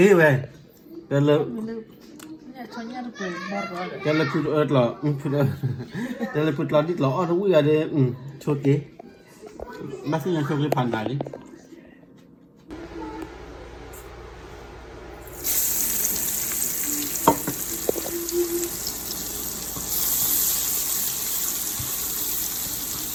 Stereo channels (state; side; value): identical; both; correlation 1.00